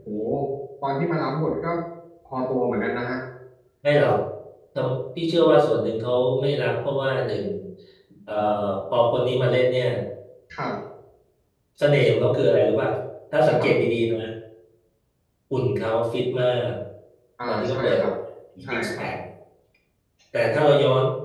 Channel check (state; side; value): identical; both; correlation 1.00